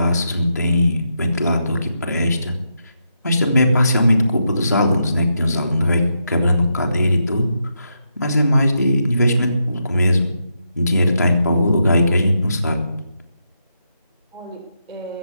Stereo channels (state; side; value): inverted; both; correlation -0.83